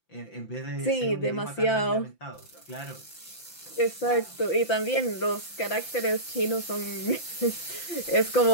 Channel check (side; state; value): right; late; 5.9 ms